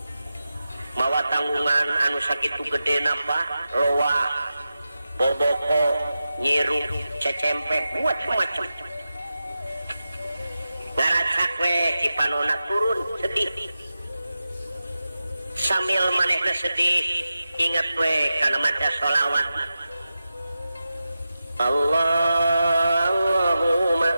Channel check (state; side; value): inverted; both; correlation -0.92